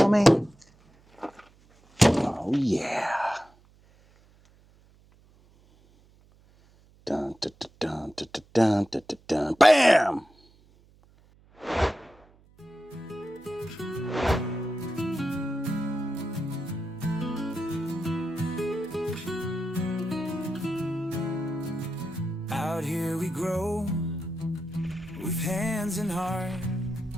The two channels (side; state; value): right; noise; hum, 29 dB below the sound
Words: me? Oh yeah. Dun dun dun dun dun dun dun dun dun. Bam! Out here we grow with hands and heart,